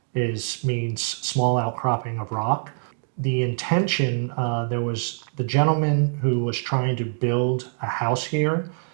means small outcropping of rock. The intention, there was the gentleman who was trying to build a house here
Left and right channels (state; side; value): silent; left; digital silence